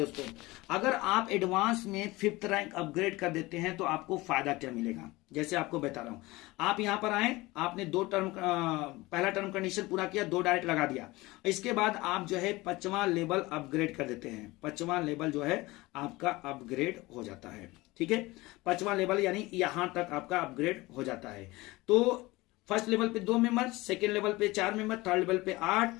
अगर आप एडवांस में 5th रैंक अपग्रेड कर देते हैं तो आपको फायदा क्या मिलेगा, जैसे आपको बता रहा हूं। आप यहां पर आए, आपने 2 टर्म पहला टर्म कंडीशन पूरा किया, 2 डायरेक्ट लगा दिया, इसके बाद आप जो है 5वां लेवल अपग्रेड कर देते हैं। 5वां लेवल जो है आपका अपग्रेड हो जाता है। ठीक है, 5वां लेवल यानी यहां तक आपका अपग्रेड हो जाता है। तो फर्स्ट लेवल पे 2 मेंबर, सेकेंड लेवल पे 4 मेंबर, थर्ड लेवल पे 8,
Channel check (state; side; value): quieter; right; 20.9 dB